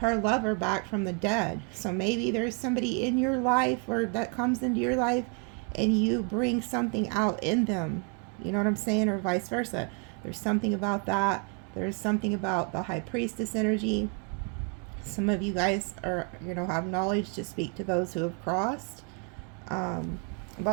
lover back from the dead. So maybe there's somebody in your life, or that comes into your life, and you bring something out in them. You know what I'm saying? Or vice versa. There's something about that. There's something about the high priestess energy. Some of you guys are, you know, have knowledge to speak to those who have crossed.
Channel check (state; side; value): quieter; left; 35.7 dB